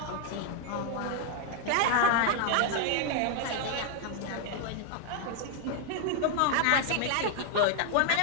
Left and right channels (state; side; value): different; both; correlation 0.01